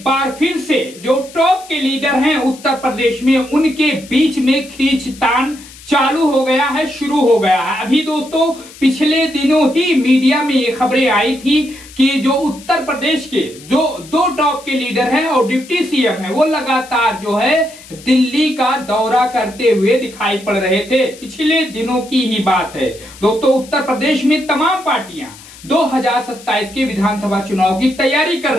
बार फिर से जो टॉप के लीडर हैं उत्तर प्रदेश में, उनके बीच में खींचतान चालू हो गया है, शुरू हो गया है। अभी दोस्तों पिछले दिनों ही मीडिया में ये खबरें आई थी कि जो उत्तर प्रदेश के जो दो टॉप के लीडर हैं और डिप्टी सीएम हैं, वो लगातार जो है दिल्ली का दौरा करते हुए दिखाई पड़ रहे थे। पिछले दिनों की ही बात है दोस्तों। उत्तर प्रदेश में तमाम पार्टियां 2027 के विधानसभा चुनाव की तैयारी कर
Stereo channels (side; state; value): left; noise; hiss, 20 dB below the sound